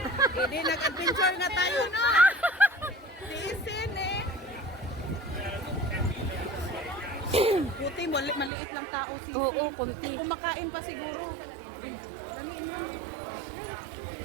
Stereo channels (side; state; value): left; drops out; at 8.5 s